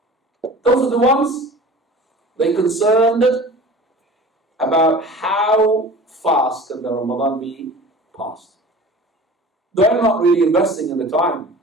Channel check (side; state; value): both; normal; correlation 0.41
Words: Those are the ones they're concerned about how fast can the Ramadan be passed. They're not really investing in the time.